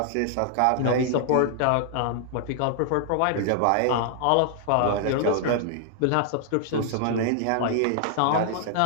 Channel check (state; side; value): different; both; correlation -0.01